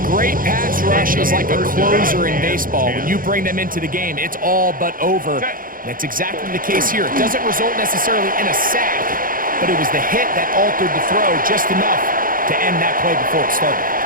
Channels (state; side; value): late; left; 0.41 ms